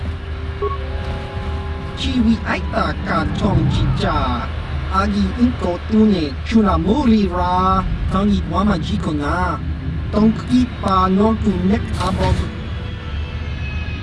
Chiwi aita ka tong jija agi inko tune chuna muri ra tangi wama jiko na tong kipa non tu nek abog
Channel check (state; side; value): identical; both; correlation 1.00